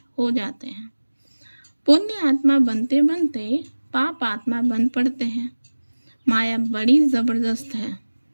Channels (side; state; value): both; inverted; correlation -1.00